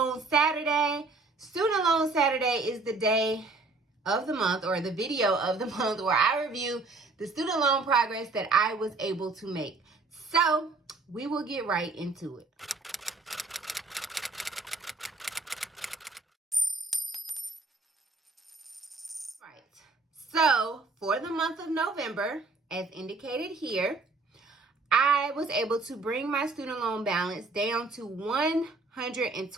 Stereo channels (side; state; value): left; quieter; 3.8 dB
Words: Saturday. Student Loan Saturday is the day of the month, or the video of the month, where I review the student loan progress that I was able to make. So we will get right into it. So for the month of November, as indicated here, I was able to bring my student loan balance down to